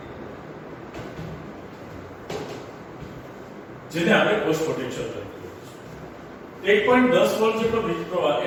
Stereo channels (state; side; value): identical; both; correlation 1.00